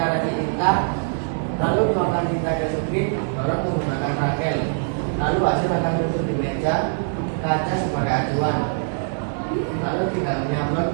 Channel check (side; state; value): left; silent; digital silence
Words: kasih tinta, lalu tuangkan tinta ke skrip, dorong menggunakan rakel. Lalu hasil akan tutup di meja kaca sebagai acuan. Lalu tinggal menyablon